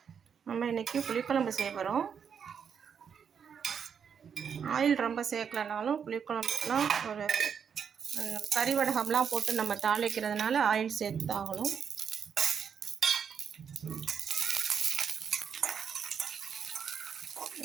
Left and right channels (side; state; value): left; quieter; 7.2 dB